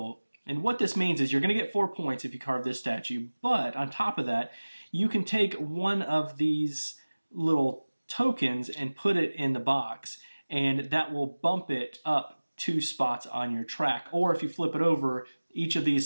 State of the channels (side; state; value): both; inverted; correlation -1.00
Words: And what this means is you're going to get 4 points if you carve this statue, but on top of that, you can take one of these little tokens and put it in the box, and that will bump it up 2 spots on your track. Or if you flip it over, each of these